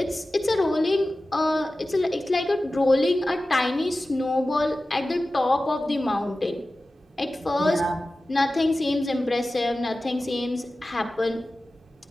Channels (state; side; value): normal; both; correlation 0.95